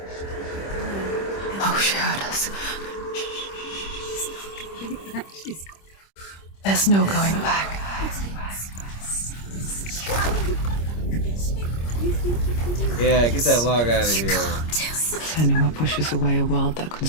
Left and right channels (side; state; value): right; late; 26 ms